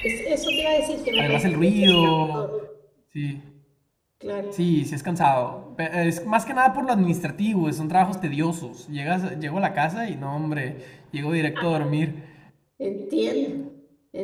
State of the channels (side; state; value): both; identical; correlation 1.00